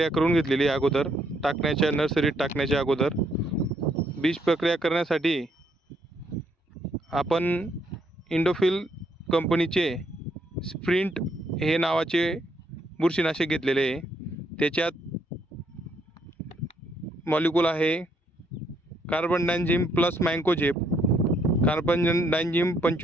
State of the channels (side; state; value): both; normal; correlation 0.72